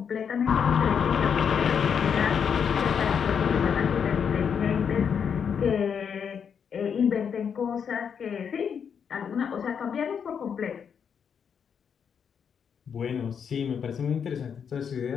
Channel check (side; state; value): right; quieter; 7.2 dB